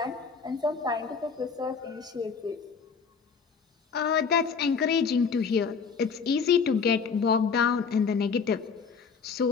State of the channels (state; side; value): quieter; right; 5.7 dB